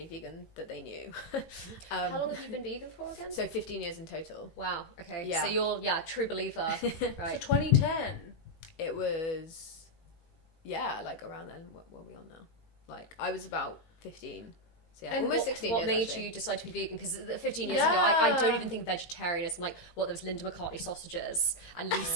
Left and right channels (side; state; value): right; late; 17 ms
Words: vegan that they knew. How long have you been vegan for again? So 15 years in total. Wow. Okay. Yeah. So you're true believer. Right. So 2010. It was, like around then. What were we on now? Like, I was about 15. So and almost 16 years. What made actually. you decide to be vegan? Because 15 years ago, I don't even think vegetarianism, like, there was Linda McCartney sausages and